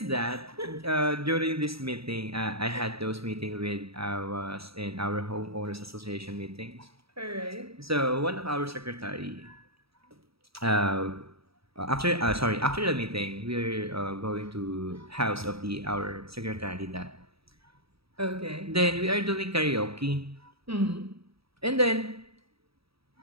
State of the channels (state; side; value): late; left; 0.77 ms